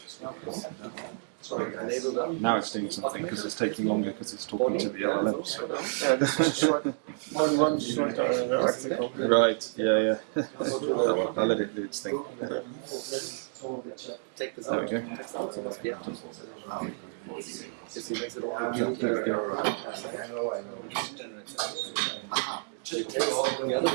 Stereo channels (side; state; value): left; silent; digital silence